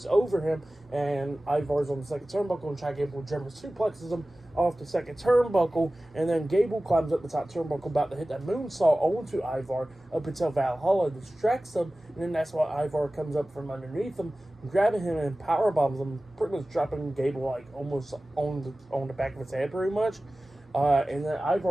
over him, and Ivar's on the second turnbuckle, and Chad Gable German suplexes him off the second turnbuckle, and then Gable climbs up the top turnbuckle, about to hit that moonsault onto Ivar, up until Valhalla distracts him, and then that's why Ivar comes up from underneath him, grabbing him and powerbombs him, pretty much dropping Gable like almost on the back of his head, pretty much. And then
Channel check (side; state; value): both; normal; correlation 0.97